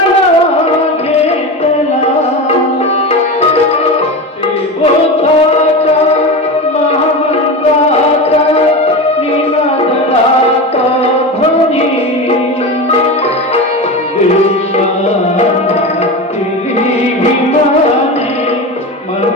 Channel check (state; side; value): normal; both; correlation 0.24